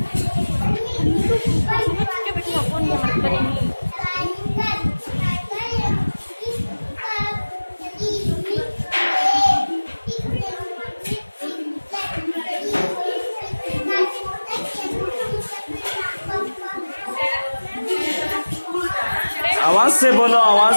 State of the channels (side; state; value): both; inverted; correlation -1.00